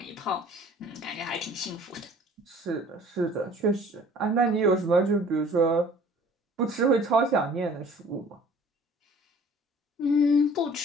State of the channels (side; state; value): both; normal; correlation 0.51